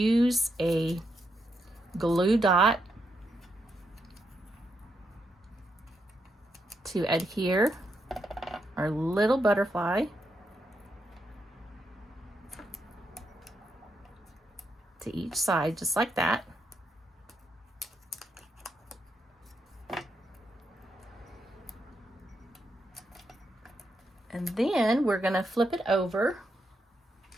a glue dot to adhere our little butterfly to each side, just like that. And then we're going to flip it over,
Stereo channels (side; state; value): both; normal; correlation 0.81